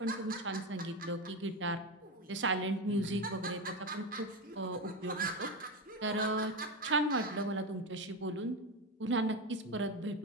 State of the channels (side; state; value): both; normal; correlation 0.16